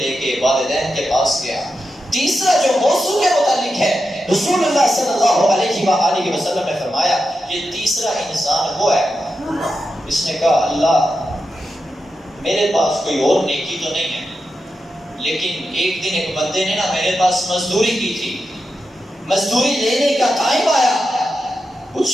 کے والدین کے پاس گیا۔ تیسرا جو موضوع کے متعلق ہے، رسول اللہ صلی اللہ علیہ وآلہ وسلم نے فرمایا یہ تیسرا انسان وہ ہے، اس نے کہا اللہ میرے پاس کوئی اور نیکی تو نہیں ہے، لیکن ایک دن ایک بندے نے نا میرے پاس مزدوری کی تھی، مزدوری لینے کا ٹائم آیا، کچھ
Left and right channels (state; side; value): normal; both; correlation 0.89